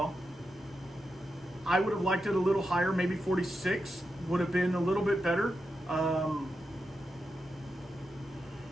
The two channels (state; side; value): normal; both; correlation 0.88